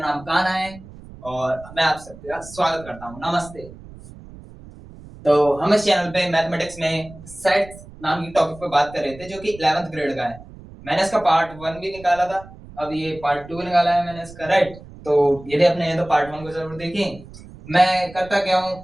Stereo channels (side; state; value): right; noise; rumble, 18 dB below the sound